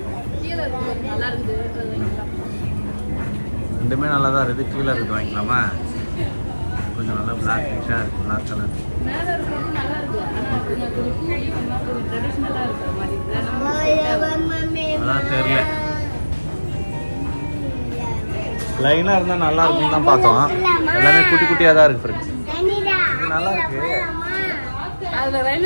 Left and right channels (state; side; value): inverted; both; correlation -1.00